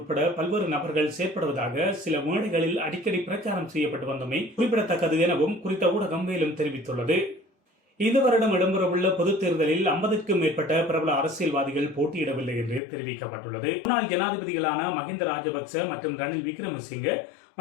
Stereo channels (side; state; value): right; drops out; at 12.8 s